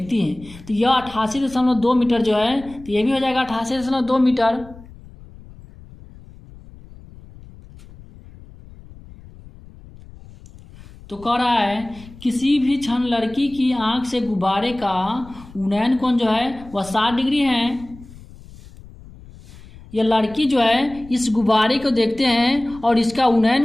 हैं। तो यह 88.2 मीटर जो है, तो यह भी हो जाएगा 88.2 मीटर। तो कह रहा है किसी भी क्षण लड़की की आंख से गुब्बारे का उन्नयन कोण जो है वह 60 डिग्री है। यह लड़की जो है इस गुब्बारे को देखते हैं और इसका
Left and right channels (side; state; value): left; noise; rumble, 20 dB below the sound